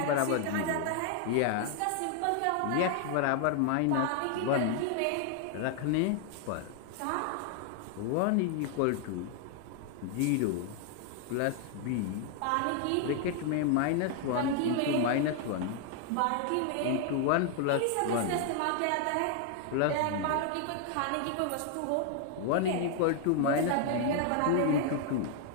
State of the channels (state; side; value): different; both; correlation 0.00